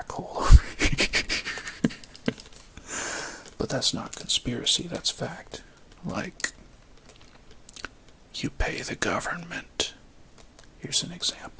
hole. But that's not conspiracy, that's fact. Like, you pay the government. Here's an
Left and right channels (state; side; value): identical; both; correlation 1.00